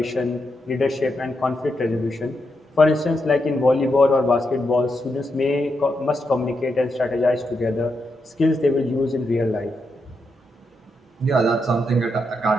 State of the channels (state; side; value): normal; both; correlation 0.83